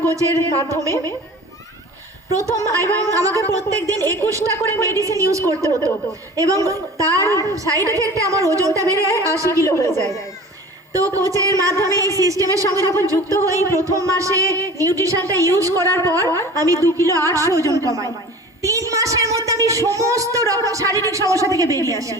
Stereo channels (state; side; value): normal; both; correlation 0.41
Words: কোচের মাধ্যমে। প্রথম এবং আমাকে প্রত্যেক দিন 21টা করে মেডিসিন ইউজ করতে হতো, এবং তার সাইড এফেক্টে আমার ওজনটা বেড়ে 80 কিলো হয়ে যায়। তো কোচের মাধ্যমে এই সিস্টেমের সঙ্গে যখন যুক্ত হই, প্রথম মাসে নিউট্রিশনটা ইউজ করার পর আমি 2 কিলো 800 ওজন কমাই। 3 মাসের মধ্যে আমি সমস্ত রকম শারীরিক সমস্যা থেকে বেরিয়ে আসি।